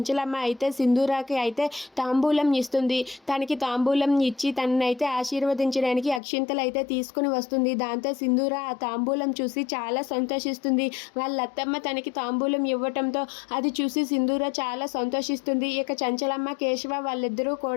అయితే సింధూరాకి అయితే తాంబూలం ఇస్తుంది. తనకి తాంబూలం ఇచ్చి తననైతే ఆశీర్వదించడానికి అక్షింతలు అయితే తీసుకుని వస్తుంది. దాంతో సింధూర ఆ తాంబూలం చూసి చాలా సంతోషిస్తుంది. వాళ్ళ అత్తమ్మ తనకి తాంబూలం ఇవ్వటంతో అది చూసి సింధూర చాలా సంతోషిస్తుంది. ఇక చంచలమ్మ కేశవ వాళ్ళిద్దరూ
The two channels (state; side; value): drops out; right; at 6.2 s